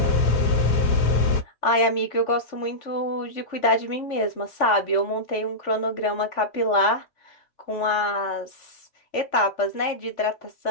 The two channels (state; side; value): late; right; 3.5 ms